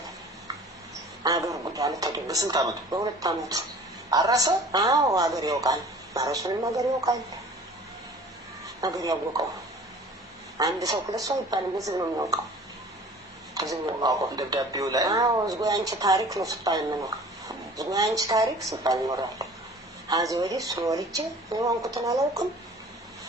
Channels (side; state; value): both; normal; correlation 0.46